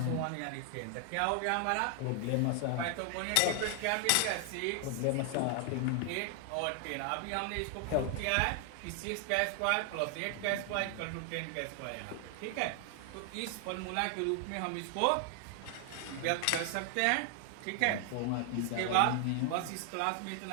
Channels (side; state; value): both; different; correlation 0.00